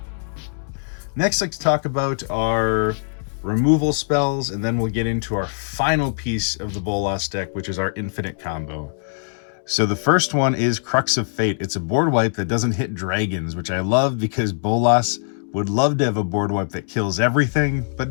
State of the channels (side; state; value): right; silent; 64 dB below the other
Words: Next, let's talk about our removal spells, and then we'll get into our final piece of the Bolas deck, which is our infinite combo. So the first one is Crux of Fate. It's a board wipe that doesn't hit dragons, which I love because Bolas would love to have a board wipe that kills everything, but